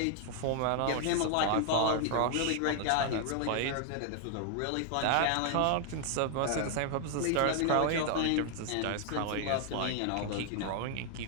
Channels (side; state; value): both; different; correlation 0.00